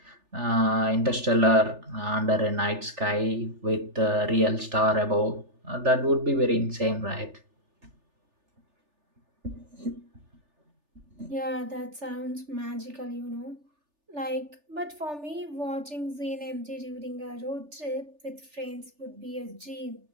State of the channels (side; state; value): left; late; 3.4 ms